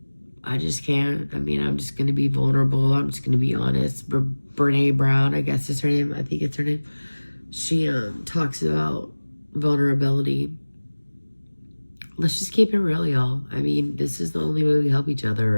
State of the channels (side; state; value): both; inverted; correlation -1.00